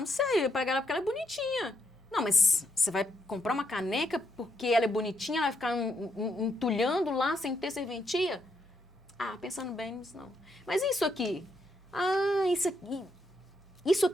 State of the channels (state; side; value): normal; both; correlation 0.78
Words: sei, eu vou pegar ela porque ela é bonitinha. Não, mas você vai comprar uma caneca porque ela é bonitinha, ela vai ficar entulhando lá sem ter serventia? Ah, pensando bem, não. Mas isso aqui? Ah, isso